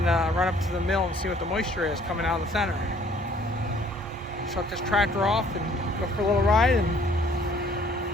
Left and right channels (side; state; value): both; normal; correlation 0.58